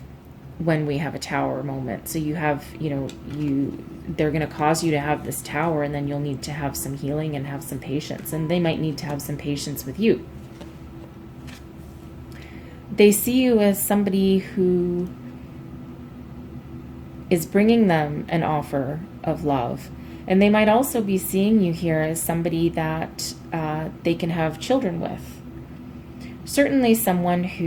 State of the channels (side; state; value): both; identical; correlation 1.00